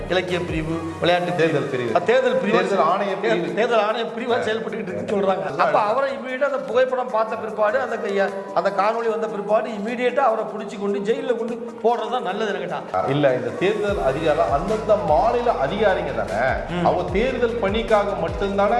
இலக்கிய பிரிவு, விளையாட்டு தேர்தல் பிரிவு, தேர்தல் பிரிவு, தேர்தல் ஆணைய பிரிவாக செயல்பட்டுக்கிட்டு இருக்குன்னு சொல்கிறாங்க. அப்போ அவரை இமீடியட்டாக அந்த புகைப்படம் பார்த்த பிற்பாடு, அந்த காணொலி வந்த பிற்பாடு இமீடியட்டாக அவரை பிடிச்சி கொண்டு ஜெயிலில் கொண்டு போடுறது தான் நல்லது கேட்டான். இல்லை, இந்த தேர்தல் அதிகாரம் அந்தந்த மாநில அதிகாரிங்க தானே, அவங்க தேர்தல் பணிக்காக மட்டும்தானே.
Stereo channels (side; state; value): both; identical; correlation 1.00